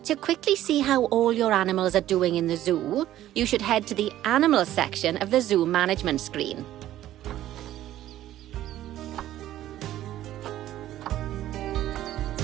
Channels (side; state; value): left; quieter; 13.3 dB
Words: to quickly see how all your animals are doing in the zoo, you should head to the animal section of the zoo management screen.